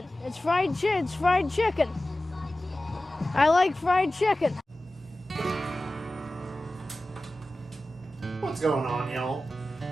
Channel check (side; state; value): both; normal; correlation 0.95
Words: It's fried chicken. It's fried chicken. I like fried chicken. What's going on, y'all?